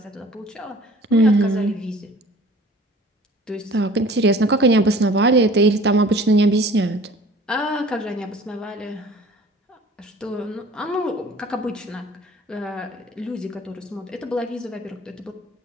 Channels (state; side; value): normal; both; correlation 0.47